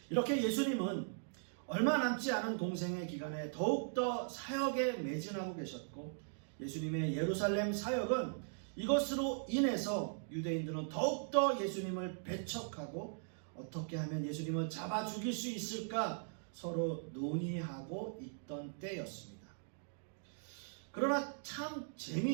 이렇게 예수님은 얼마 남지 않은 공생의 기간에 더욱더 사역에 매진하고 계셨고, 예수님의 예루살렘 사역은 이것으로 인해서 유대인들은 더욱더 예수님을 배척하고 어떻게 하면 예수님을 잡아 죽일 수 있을까 서로 논의하고 있던 때였습니다. 그러나 참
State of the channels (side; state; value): left; silent; digital silence